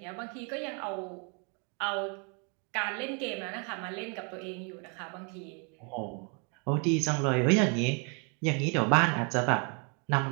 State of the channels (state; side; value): quieter; left; 36.4 dB